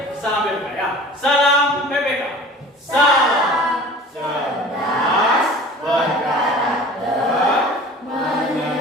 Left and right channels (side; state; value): both; normal; correlation 0.42